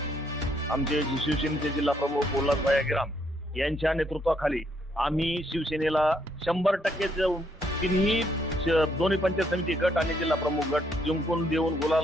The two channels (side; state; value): both; normal; correlation 0.72